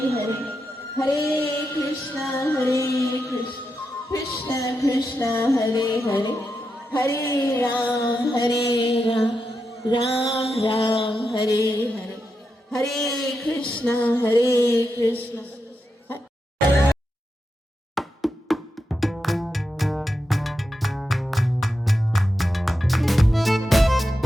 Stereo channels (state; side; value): normal; both; correlation 0.87